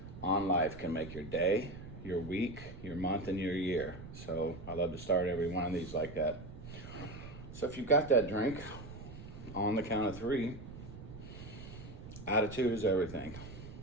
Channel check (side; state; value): right; noise; rumble, 13 dB below the sound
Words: on life can make your day, your week, your month, and your year. So I love to start every one of these like that. So if you've got that drink, on the count of 3, attitude is everything.